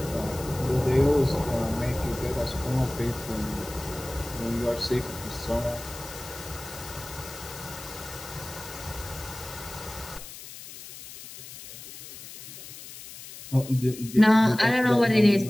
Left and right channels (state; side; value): noise; left; hiss, 14 dB below the sound